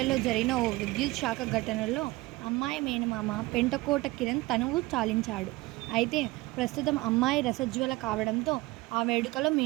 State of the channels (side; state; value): left; quieter; 20.7 dB